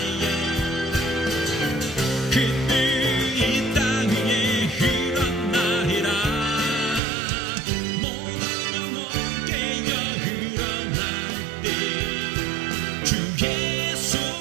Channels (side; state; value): left; drops out; at 7.0 s